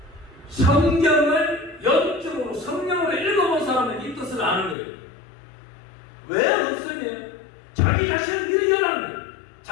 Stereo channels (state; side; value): drops out; right; at 4.8 s